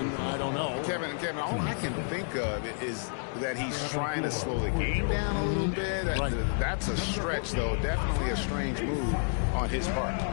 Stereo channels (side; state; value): right; silent; digital silence